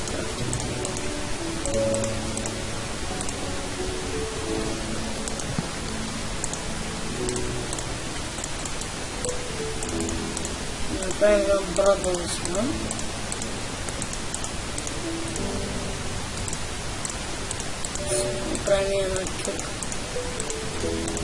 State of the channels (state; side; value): identical; both; correlation 1.00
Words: крафтинг тейбъл. Да направим една брадва за сега. Направим една кюрка.